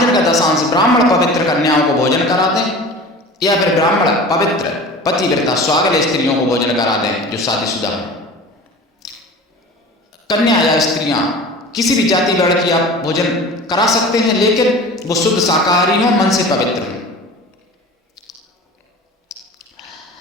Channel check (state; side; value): normal; both; correlation 0.38